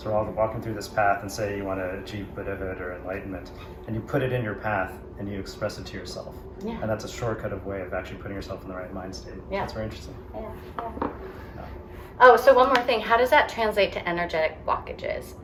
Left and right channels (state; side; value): identical; both; correlation 1.00